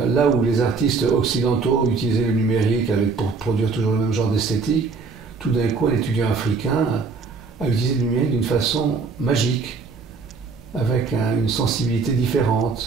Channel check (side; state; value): left; quieter; 4.6 dB